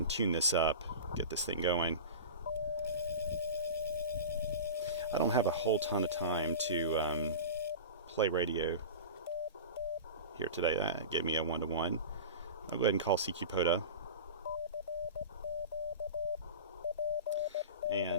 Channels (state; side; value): inverted; both; correlation -0.31